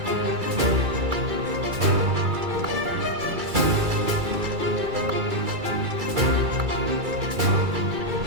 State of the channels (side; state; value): left; late; 2.3 ms